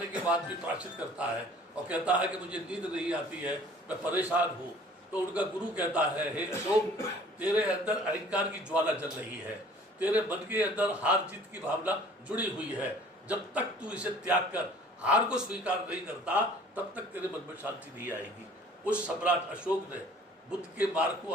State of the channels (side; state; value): both; normal; correlation 0.51